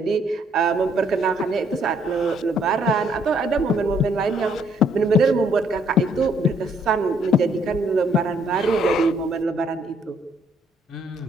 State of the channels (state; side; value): normal; both; correlation 0.67